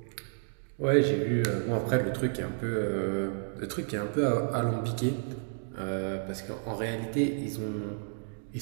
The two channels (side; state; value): left; silent; digital silence